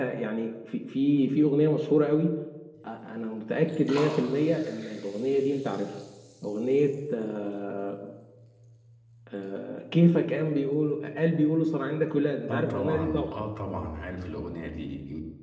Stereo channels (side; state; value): both; identical; correlation 1.00